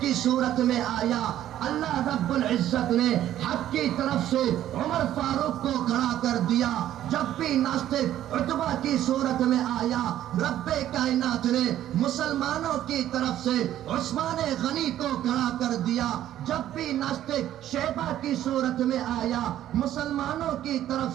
صورت میں آیا، اللہ رب العزت نے حق کی طرف سے عمر فاروق کو کھڑا کر دیا۔ جب بھی ناستک عتبہ کی صورت میں آیا، رب کائنات نے مسلمانوں کی طرف سے عثمان غنی کو کھڑا کر دیا۔ جب بھی ناستک شیبہ کی صورت میں آیا، مسلمانوں کی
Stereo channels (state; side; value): quieter; left; 12.2 dB